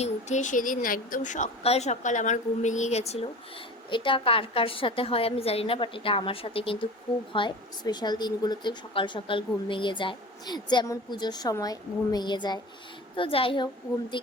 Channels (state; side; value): normal; both; correlation 0.36